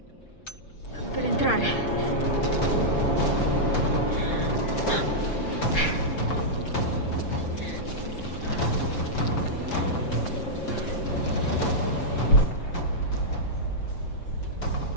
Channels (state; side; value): late; right; 6.5 ms